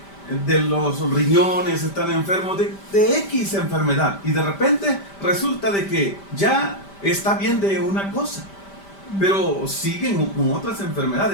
los riñones, están enfermos de X enfermedad. Y de repente resulta de que ya está bien de una cosa, pero siguen con otras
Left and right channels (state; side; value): late; right; 5.1 ms